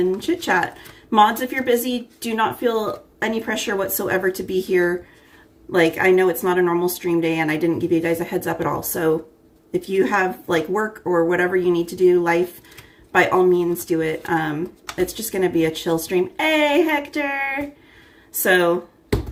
chit chat. Mods, if you're busy, do not feel any pressure whatsoever to be here. Like, I know it's not a normal stream day and I didn't give you guys a heads up at all. So if you have like work or whatever you need to do, life, by all means do it. It's just going to be a chill stream. Hey, Hector. So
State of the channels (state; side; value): identical; both; correlation 1.00